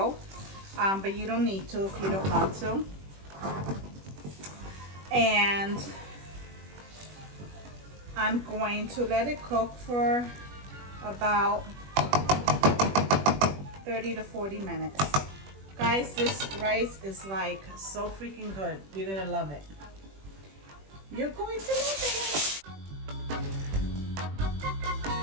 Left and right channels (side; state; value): left; late; 21 ms